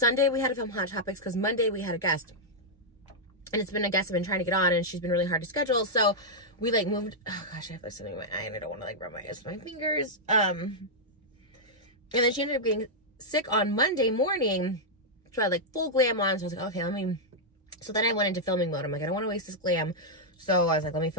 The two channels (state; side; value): normal; both; correlation -0.06